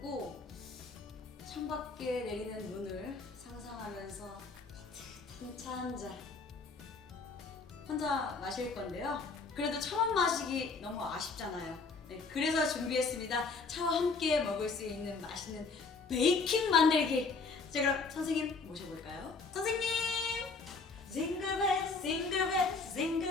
창밖에 내리는 눈을 상상하면서 따뜻한 차 한 잔 혼자 마실 건데요. 그래도 처음 마시기 너무 아쉽잖아요. 네, 그래서 준비했습니다. 차와 함께 먹을 수 있는 맛있는 베이킹 만들기. 자, 그럼 선생님 모셔볼까요? 선생님! 징글벨 징글벨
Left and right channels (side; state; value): right; quieter; 4.3 dB